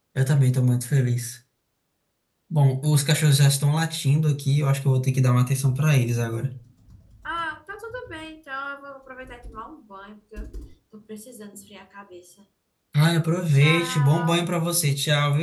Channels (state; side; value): identical; both; correlation 1.00